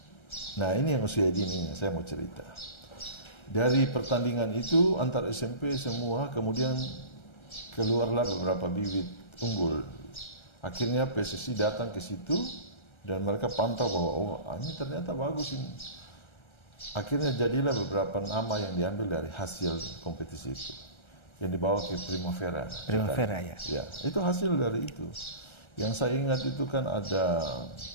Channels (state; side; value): late; right; 1.3 ms